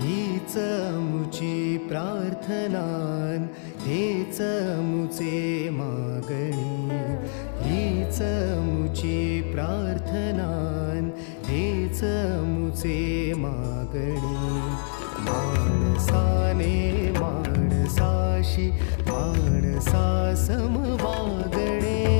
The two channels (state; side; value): silent; right; digital silence